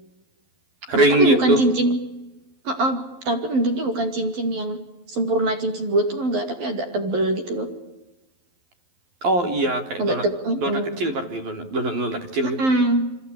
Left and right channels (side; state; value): left; late; 12 ms